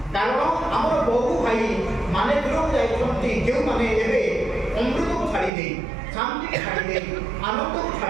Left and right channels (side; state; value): left; drops out; at 5.5 s